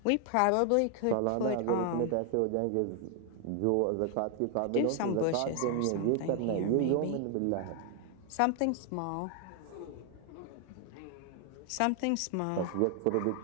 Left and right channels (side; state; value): both; different; correlation 0.00